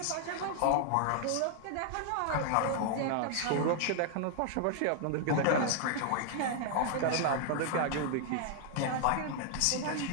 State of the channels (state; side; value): different; both; correlation 0.00